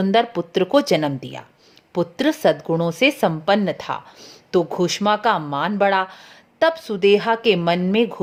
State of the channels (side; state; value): both; identical; correlation 1.00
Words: पुत्र को जन्म दिया। पुत्र सद्गुणों से संपन्न था तो घुश्मा का मान बढ़ा। तब सुदेहा के मन में